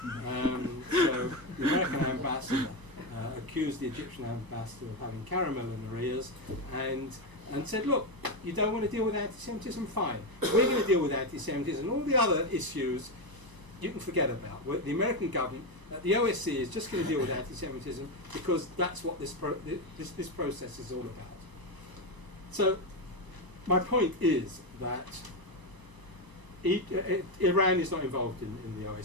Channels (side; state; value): left; late; 1.0 ms